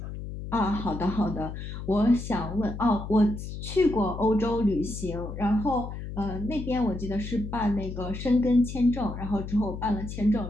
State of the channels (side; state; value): left; noise; hum, 8 dB below the sound